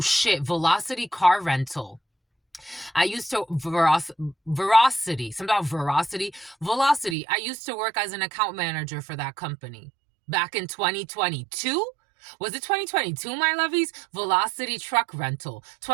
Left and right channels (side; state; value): left; drops out; at 7.2 s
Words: car rental. I used to, velocity. I used to work as an account manager for that company back in 2022. Was it 2022, my lovies? Velocity truck rental.